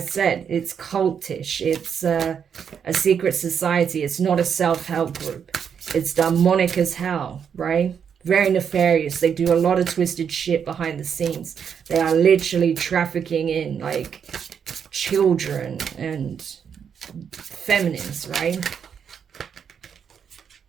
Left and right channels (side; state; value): left; quieter; 7.5 dB